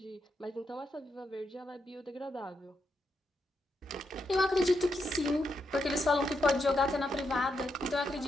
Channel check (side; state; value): both; normal; correlation 0.83